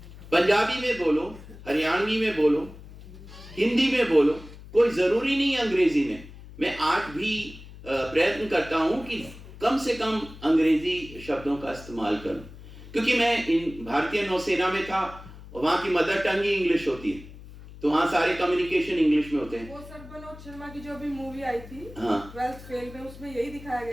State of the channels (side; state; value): left; noise; hum, 17 dB below the sound